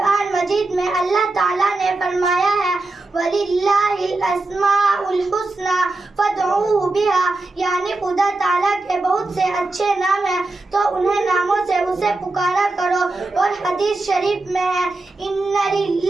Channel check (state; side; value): quieter; left; 3.1 dB